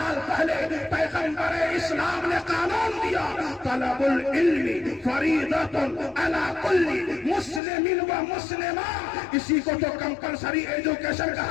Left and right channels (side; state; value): right; drops out; at 7.6 s